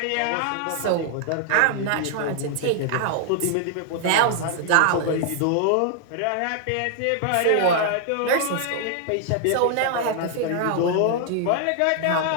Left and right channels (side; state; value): both; different; correlation 0.00